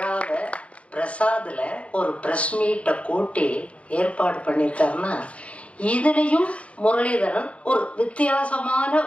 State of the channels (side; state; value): right; late; 0.062 ms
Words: பிரசாதில் ஒரு ப்ரெஸ் மீட்டை கூட்டி ஏற்பாடு பண்ணியிருக்காருன்னா, இதுலேயும் முரளிதரன் ஒரு வித்தியாசமான